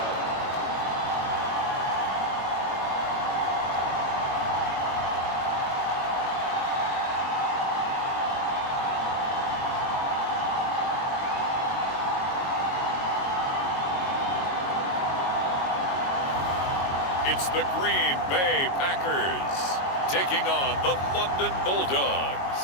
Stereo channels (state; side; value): late; right; 22 ms